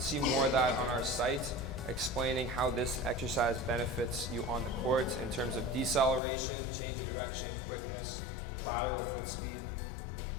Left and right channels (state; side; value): drops out; right; at 6.2 s